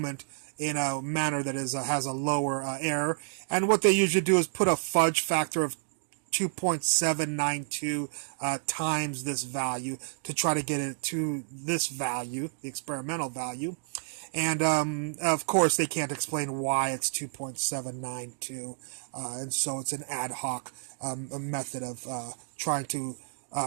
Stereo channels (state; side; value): silent; left; digital silence